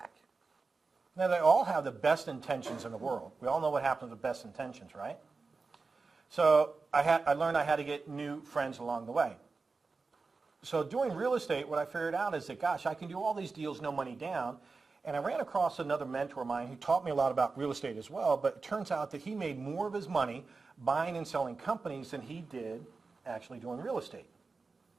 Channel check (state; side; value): quieter; left; 4.2 dB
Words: Now, they all have the best intentions in the world. We all know what happens with best intentions, right? So I learned I had to get new friends along the way. So doing real estate, what I figured out is that, gosh, I can do all these deals, no money down. And I ran across another mentor of mine who taught me a lot about real estate as well, but it turns out that he made more of his money buying and selling companies than he did actually doing real estate.